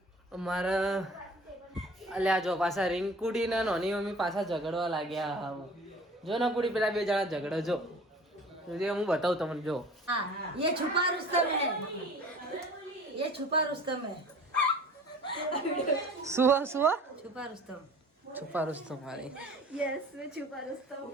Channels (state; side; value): normal; both; correlation 0.45